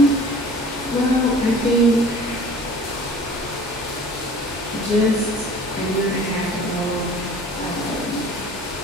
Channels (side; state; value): both; normal; correlation 0.46